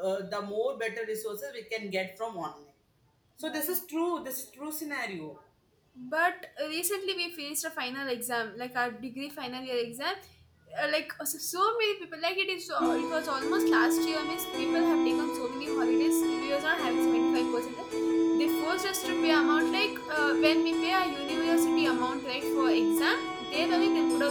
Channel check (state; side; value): identical; both; correlation 1.00